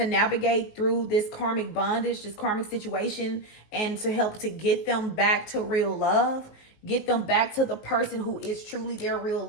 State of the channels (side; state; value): right; late; 19 ms